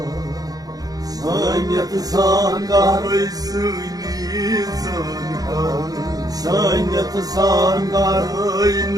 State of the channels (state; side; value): late; left; 0.18 ms